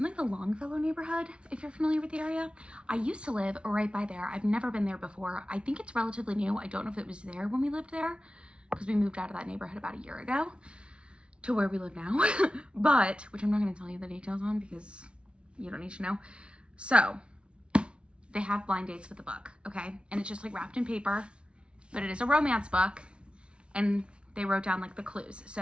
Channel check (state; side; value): late; left; 0.058 ms